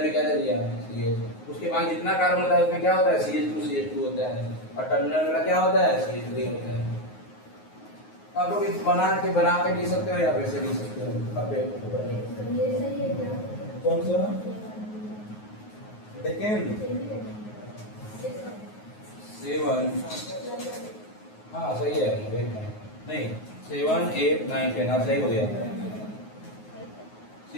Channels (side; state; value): right; late; 9.5 ms